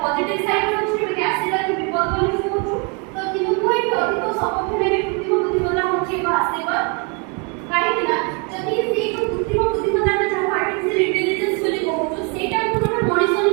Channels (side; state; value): left; quieter; 34.3 dB